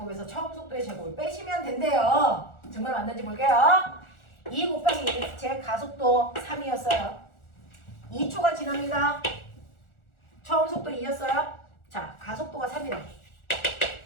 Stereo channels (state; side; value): late; right; 1.4 ms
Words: 처음 속도의 제곱을 빼시면 된대요. 정말 맞는지 볼게요. 2 곱하기 제 가속도 3이었어요. 2초가 지납니다. 처음 속도 2였어요. 자, 가속도가 3이래.